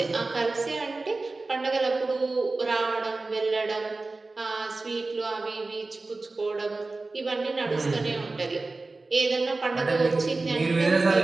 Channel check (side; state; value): left; quieter; 3.4 dB